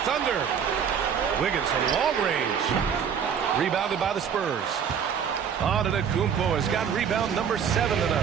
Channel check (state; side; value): quieter; left; 7.6 dB